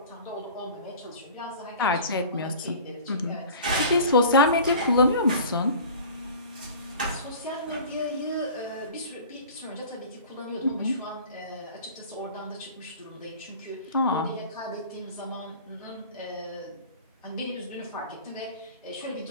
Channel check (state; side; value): inverted; both; correlation -0.41